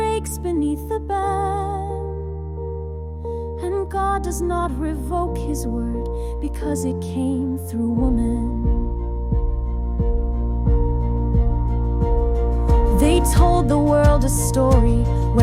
beneath the ban, and God does not revoke his word because it came through woman. They told the world a story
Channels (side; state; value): both; identical; correlation 1.00